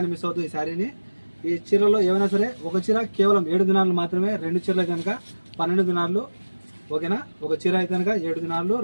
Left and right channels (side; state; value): both; inverted; correlation -1.00